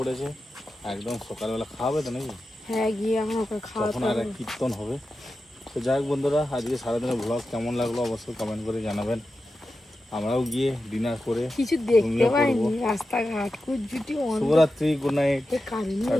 একদম সকালবেলা খাওয়াবে তো নাকি? হ্যাঁ, গিয়ে আমার ওকে তখন খাওয়াতে আর এক হবে। কীর্তন হবে। তো যাই হোক বন্ধুরা, আজকে সারাদিনের ভ্লগ কেমন লাগলো অবশ্যই কমেন্ট করে জানাবেন। আমরাও গিয়ে ডিনার করে কিছু দেখতে ঘুমিয়ে পাইনি, পড়বো। রাস্তাঘাট কুজ্জুটি শুভরাত্রি, গুড নাইট। কারণে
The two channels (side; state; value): both; normal; correlation 0.92